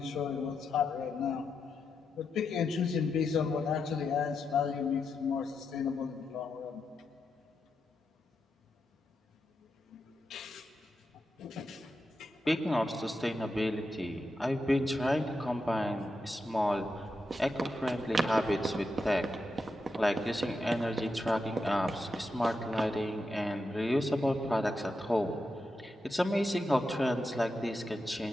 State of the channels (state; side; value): normal; both; correlation 0.86